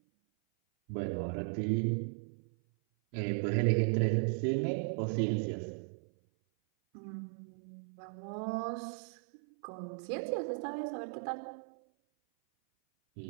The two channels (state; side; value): silent; left; 53 dB below the other